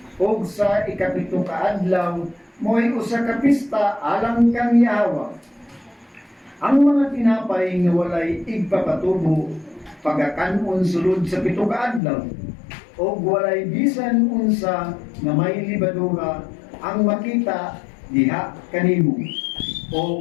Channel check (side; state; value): right; drops out; at 12.0 s